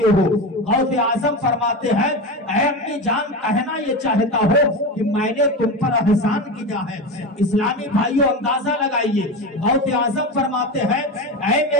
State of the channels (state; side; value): normal; both; correlation 0.22